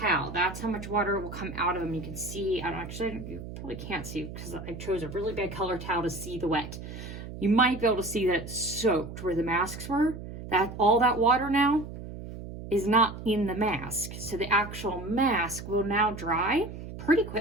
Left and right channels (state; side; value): noise; right; hum, 10 dB below the sound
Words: That's how much water will come out of them. You can see, you probably can't see because I chose a really bad color towel to see the wet. You might be able to see that it's soaked where the masks were. All that water now is not in the mask. So the actual mask will now dry pretty